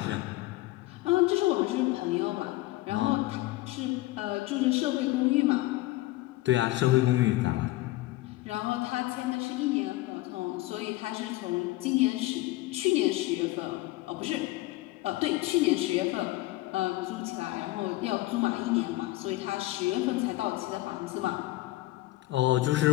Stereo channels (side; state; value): right; quieter; 18.4 dB